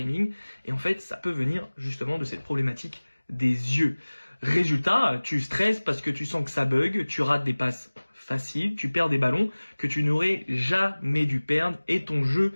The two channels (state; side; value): inverted; both; correlation -1.00